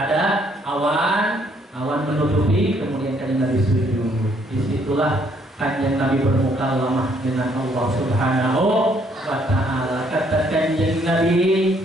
awan menutupi, kemudian kanjeng Nabi sujud. Disitulah kanjeng Nabi bermuka lemah dengan Allah Subhanahu wa Ta'ala. Kata kanjeng Nabi,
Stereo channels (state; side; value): normal; both; correlation 0.67